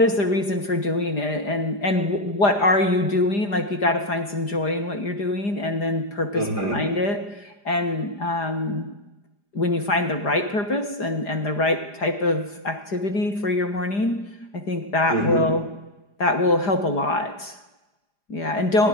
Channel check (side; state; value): right; late; 4.9 ms